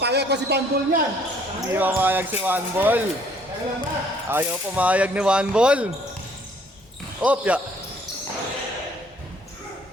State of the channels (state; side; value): normal; both; correlation 0.61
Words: ko si Bandol niyan. Hindi mamayag si Wambol. Kaya lang ba? Ayaw pumayag ni Wambol. Opya.